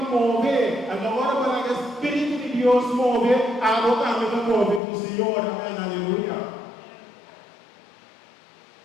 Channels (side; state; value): right; drops out; at 4.8 s